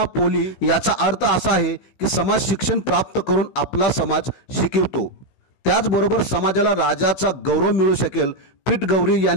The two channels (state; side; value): late; right; 16 ms